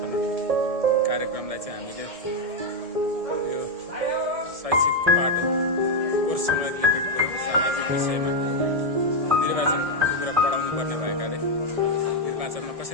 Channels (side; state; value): left; late; 1.7 ms